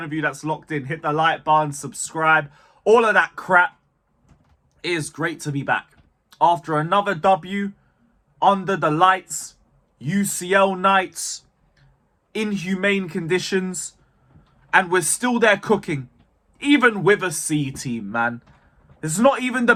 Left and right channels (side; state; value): both; identical; correlation 1.00